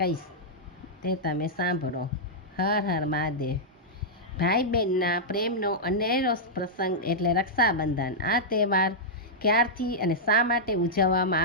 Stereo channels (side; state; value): both; normal; correlation -0.09